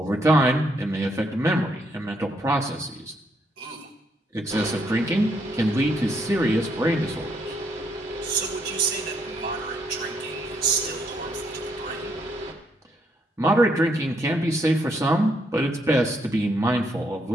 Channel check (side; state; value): both; normal; correlation 0.74